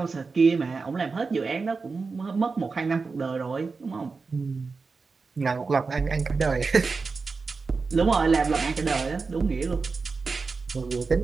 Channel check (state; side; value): quieter; left; 4.5 dB